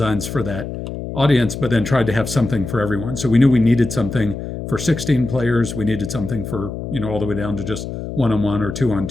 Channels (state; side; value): noise; left; hum, 7 dB below the sound